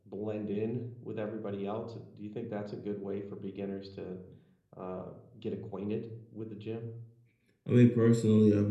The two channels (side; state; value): both; identical; correlation 1.00